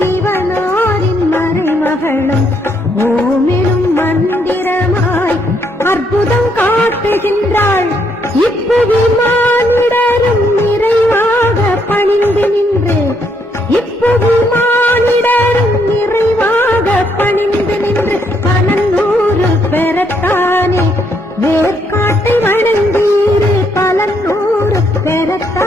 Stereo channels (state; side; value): normal; both; correlation 0.73